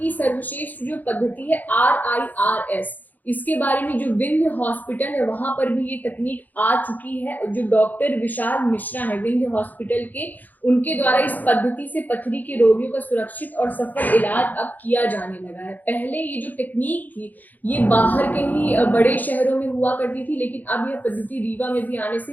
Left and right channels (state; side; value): late; right; 0.083 ms